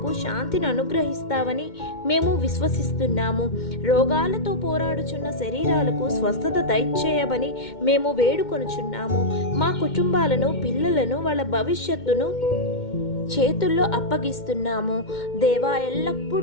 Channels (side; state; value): right; late; 2.1 ms